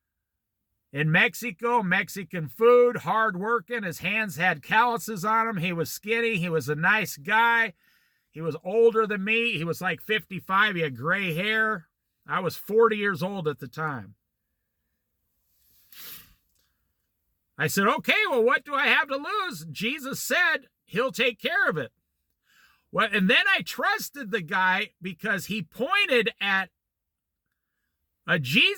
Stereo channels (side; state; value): both; identical; correlation 1.00